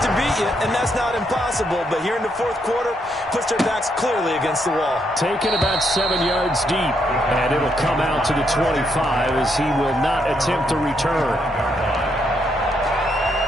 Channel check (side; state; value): both; normal; correlation 0.77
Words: beat you, and that's not impossible. But here in the fourth quarter, puts their backs clearly against the wall. Taken about 7 yards deep, and it'll come out to the 25 as he will not attempt to return.